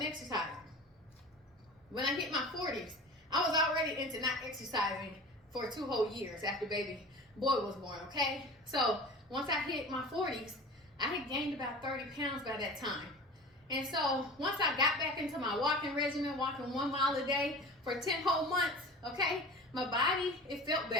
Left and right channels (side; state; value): both; normal; correlation 0.36